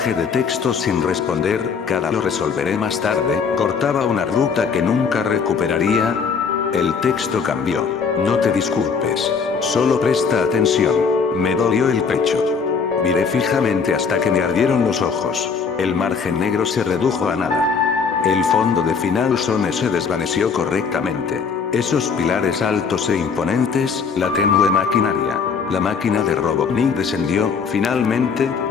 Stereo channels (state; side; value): quieter; right; 5.7 dB